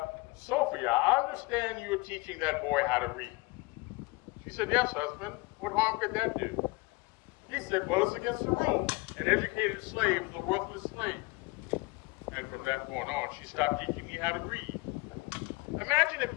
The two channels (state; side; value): quieter; right; 24.0 dB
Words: Sophia, I understand you are teaching that boy how to read. She said, yes, husband. What harm could that do? He said, well, it's against the rules. An educated slave is a worthless slave. And from that point on, she stopped teaching me how to read. Imagine if